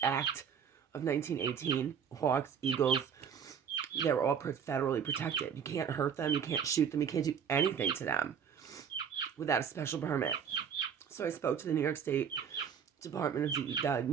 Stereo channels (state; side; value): quieter; left; 7.5 dB